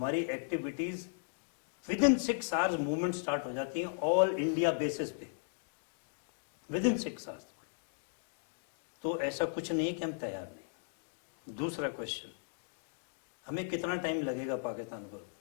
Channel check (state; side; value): silent; right; digital silence